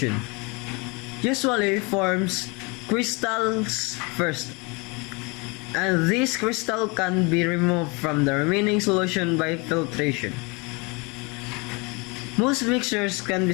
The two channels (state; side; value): quieter; right; 29.0 dB